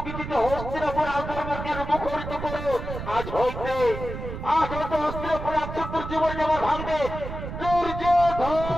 গীতিতে হস্তিনাপুর আক্রমণকে মুখরিত করো আজ হইতে হস্তিনাপুর আক্রমণ জীবন যেমন ভাঙবে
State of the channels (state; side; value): noise; right; rumble, 8 dB below the sound